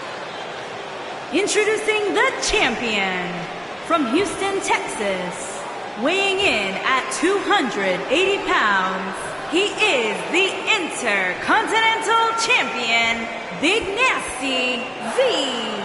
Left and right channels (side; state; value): both; identical; correlation 1.00